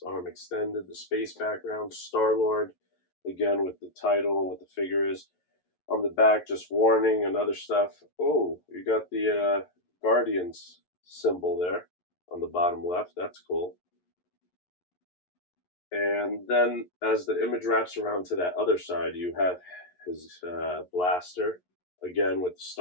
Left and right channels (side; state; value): right; late; 11 ms